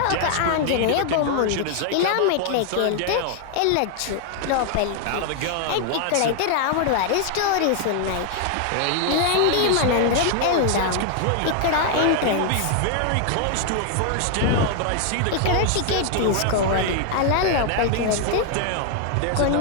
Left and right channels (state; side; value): different; both; correlation 0.00